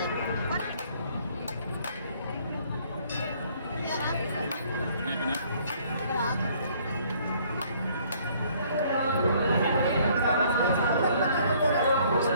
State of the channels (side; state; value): both; inverted; correlation -0.61